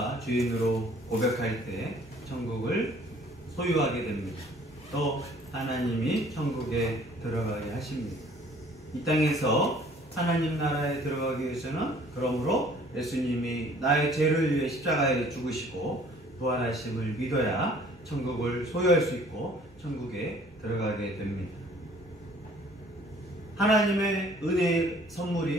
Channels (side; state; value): both; normal; correlation 0.55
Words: 주인으로 고백할 때 천국을 소유하게 됩니다. 또 하나님이 천국에 들어가게 하십니다. 이 땅에서 하나님 나라에 들어가기 위해서는 그러므로 예수님이 나의 죄를 위해 십자가에 죽으시고 부활하심을 믿어야 천국을 소유할 수 있고 천국에 들어가게 됩니다. 하나님의 은혜의